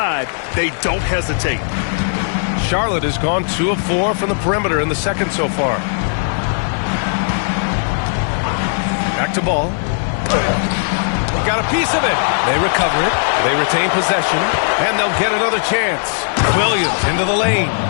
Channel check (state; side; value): silent; right; digital silence